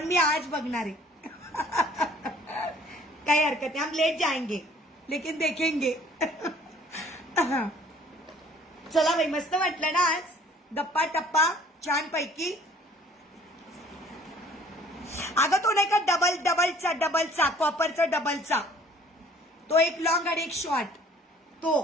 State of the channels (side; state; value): both; normal; correlation 0.55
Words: मी आज बघणार आहे. काही हरकत नाही, हम लेट जाएंगे लेकिन देखेंगे. चला बाई, मस्त वाटलं ना आज, गप्पा टप्पा छान पैकी. अगं तो नाही का डबलचा कॉपरचा डबलचा, तो एक लॉंग आणि एक शॉर्ट तो.